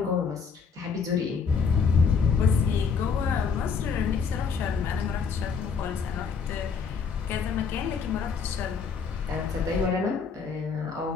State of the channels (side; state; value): right; quieter; 5.8 dB